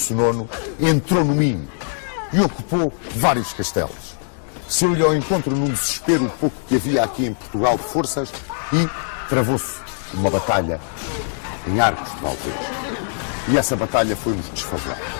IX, entrou no Minho e ocupou vários castelos. Saiu-lhe ao encontro num desespero o pouco que havia aqui em Portugal de forças e travou-se uma batalha em Arcos de Valdez. E essa batalha foi-nos desfavorável.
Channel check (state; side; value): silent; right; digital silence